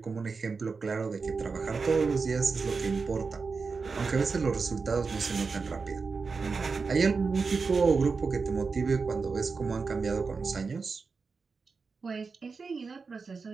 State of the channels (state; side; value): quieter; left; 4.7 dB